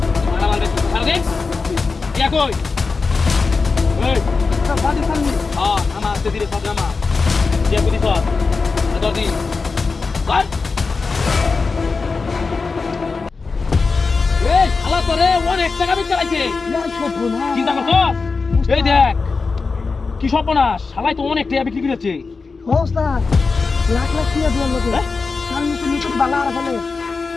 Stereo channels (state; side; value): quieter; right; 4.4 dB